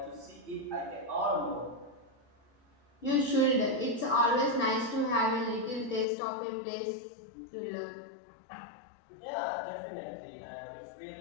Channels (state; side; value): drops out; right; at 6.1 s